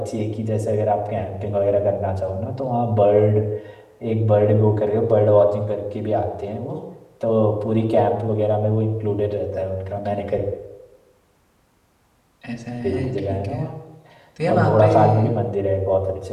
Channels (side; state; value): both; identical; correlation 1.00